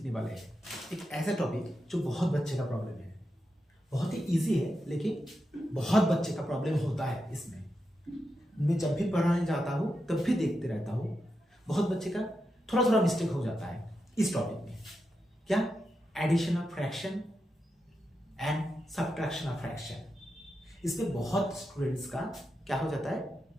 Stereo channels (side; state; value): both; normal; correlation 0.87